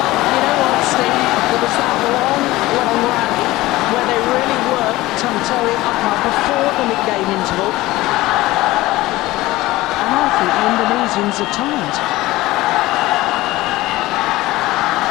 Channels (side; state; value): right; quieter; 18.3 dB